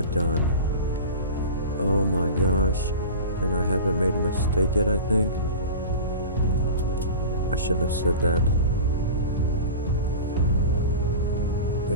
done. Oh my gosh. And I haven't made a mistake yet, I think. I shouldn't have said that.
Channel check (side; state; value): both; inverted; correlation -0.32